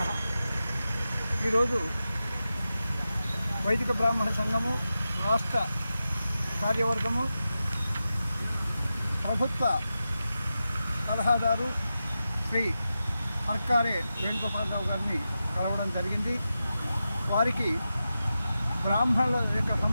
ఈరోజు వైదిక బ్రాహ్మణ సంఘము రాష్ట్ర కార్యవర్గము ప్రభుత్వ సలహాదారు శ్రీ అర్కారే వేణుగోపాలరావు గారిని కలవడం జరిగింది. వారికి బ్రాహ్మణుల యొక్క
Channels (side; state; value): both; inverted; correlation -0.91